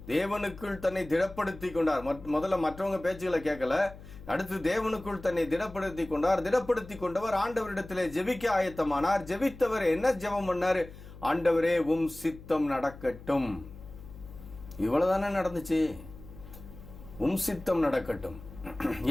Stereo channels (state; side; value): noise; left; hum, 17 dB below the sound